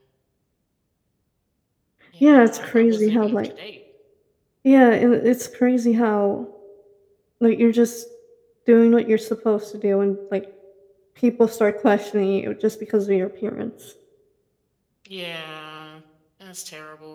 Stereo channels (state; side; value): identical; both; correlation 1.00